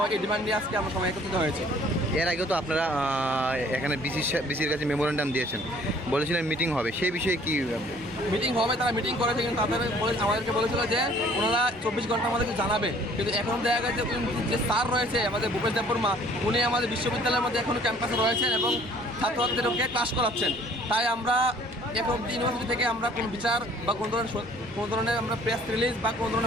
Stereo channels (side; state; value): both; normal; correlation 0.56